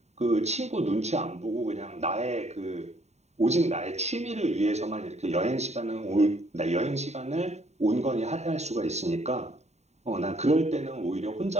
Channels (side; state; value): left; late; 0.32 ms